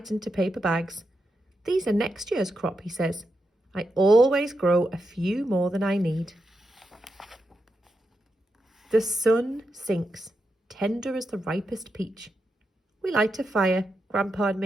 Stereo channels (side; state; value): both; normal; correlation 0.86